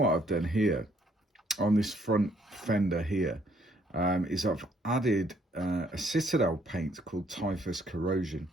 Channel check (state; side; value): normal; both; correlation 0.67